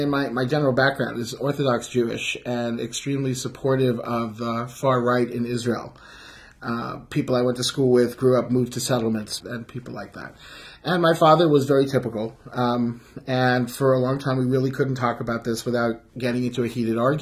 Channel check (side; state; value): both; identical; correlation 1.00